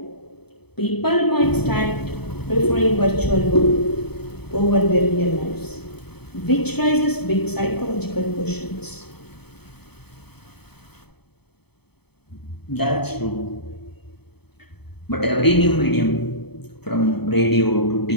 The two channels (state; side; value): late; right; 0.97 ms